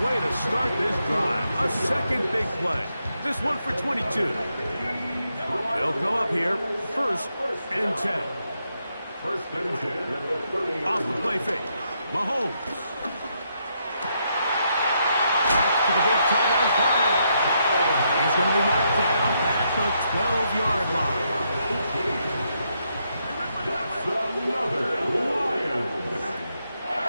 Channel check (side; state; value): both; inverted; correlation -0.79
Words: way to start this drive. A second big play. This one for 22. They'll come up here. First and 10. Off the play fake. Mahomes. Back to the big tight end corner. He's going to be marked down at the 12-yard line.